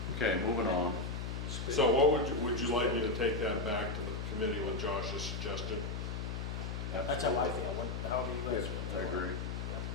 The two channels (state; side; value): noise; left; hum, 4 dB below the sound